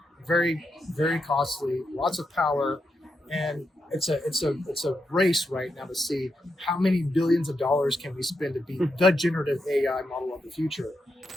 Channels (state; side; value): normal; both; correlation 0.84